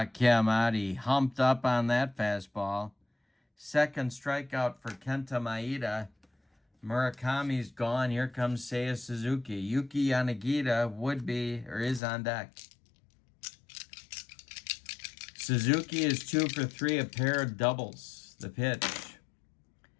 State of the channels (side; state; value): right; drops out; at 12.0 s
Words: him out. He humped up on that fastball. Second strikeout for Kenta Maeda. Murakami's gone. Here comes Seiya Suzuki. Yuki Yanagita would be or is on deck. Suzuki is 2 for 3, a pair of doubles. The pitch.